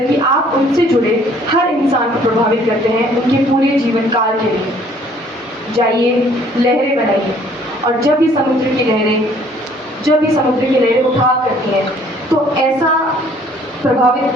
आप उनसे जुड़े हर इंसान को प्रभावित करते हैं उनके पूरे जीवन काल के लिए। जाइए, लहरें बनाइए, और जब ये समुद्र की लहरें उठाव करती हैं तो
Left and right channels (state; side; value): normal; both; correlation 0.59